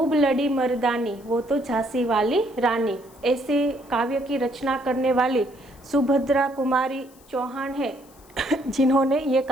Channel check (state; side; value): noise; left; hiss, 27 dB below the sound